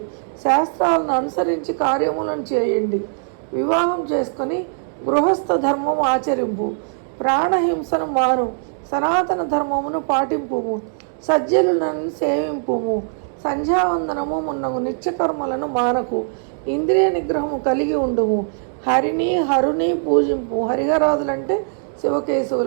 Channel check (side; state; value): left; silent; digital silence